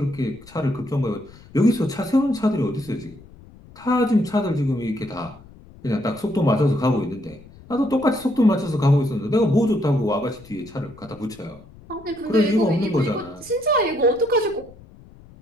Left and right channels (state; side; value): noise; left; rumble, 22 dB below the sound